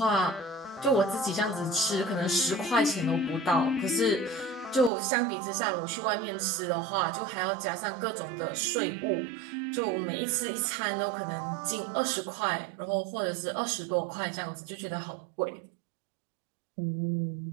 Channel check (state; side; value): drops out; left; at 4.9 s